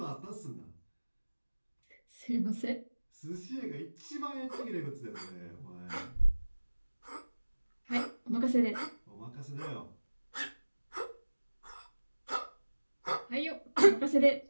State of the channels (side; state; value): both; inverted; correlation -1.00